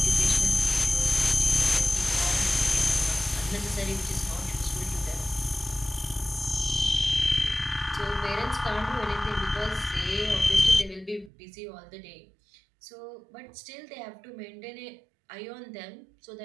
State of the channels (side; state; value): left; drops out; at 11.3 s